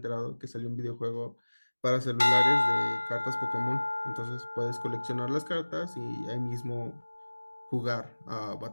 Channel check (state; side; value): inverted; both; correlation -1.00